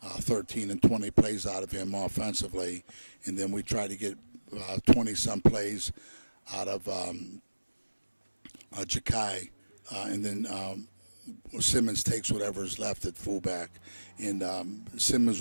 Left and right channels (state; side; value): inverted; both; correlation -1.00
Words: 13 and 20 plays out of him offensively, and then we try to get 20-some plays out of Jakai, and then Simmons takes whatever's left at fullback. And